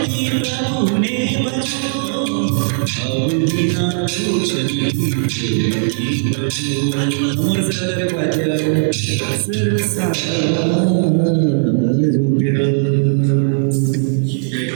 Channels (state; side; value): silent; left; digital silence